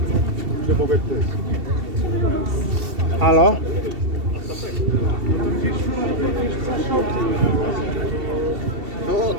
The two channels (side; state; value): left; late; 2.7 ms